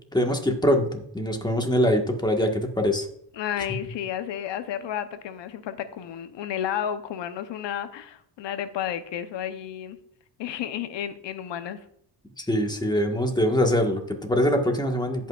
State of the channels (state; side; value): normal; both; correlation 0.46